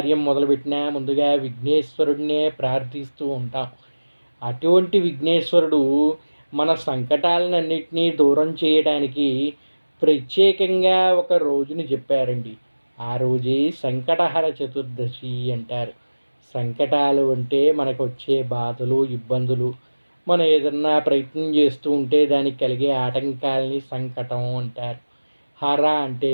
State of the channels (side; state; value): both; inverted; correlation -1.00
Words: మొదలుపెట్టినా ముందుగా విఘ్నేశ్వరుడినే ప్రార్థిస్తూ ఉంటాం. అటువంటి విఘ్నేశ్వరుడు మన సంకటాలన్నింటినీ దూరం చేయడానికి ప్రత్యేకంగా ఒక రోజుని చెప్పారండి. ఆ రోజే సంకటహర చతుర్దశి అంటారు. సంకటాలు అంటే మనకు వచ్చే బాధలు, ఇబ్బందులు, మనం ఏదన్నా ప్రయత్నం చేస్తూ ఉంటే దానికి కలిగే ఆటంకాలని సంకటం అంటారు. హర అంటే